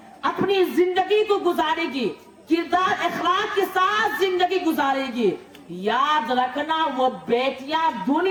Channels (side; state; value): both; identical; correlation 1.00